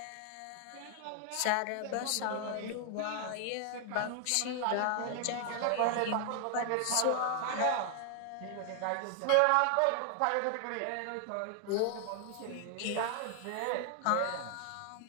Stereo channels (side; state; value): both; different; correlation 0.00